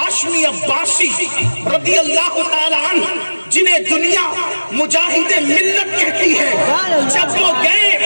عباسی رضی اللہ تعالیٰ عنہ، جنہیں دنیا مجاہد ملت کہتی ہے، جب وہ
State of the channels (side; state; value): both; inverted; correlation -1.00